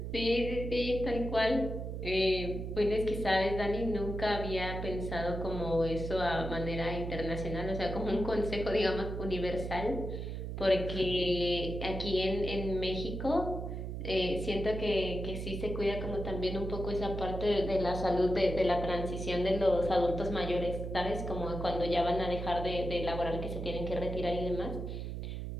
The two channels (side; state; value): right; noise; hum, 5 dB below the sound